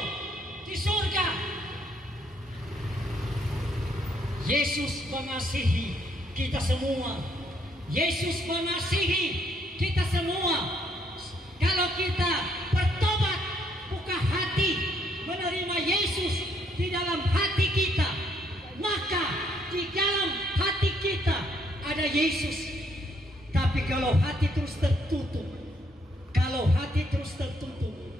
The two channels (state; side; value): normal; both; correlation 0.70